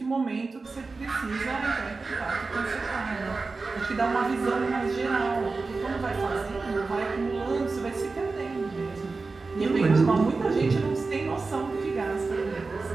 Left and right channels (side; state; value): left; quieter; 4.0 dB